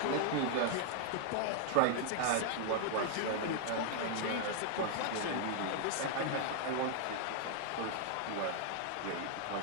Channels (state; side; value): different; both; correlation 0.00